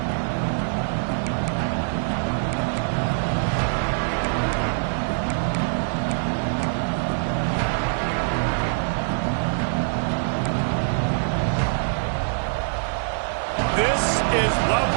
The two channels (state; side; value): silent; left; digital silence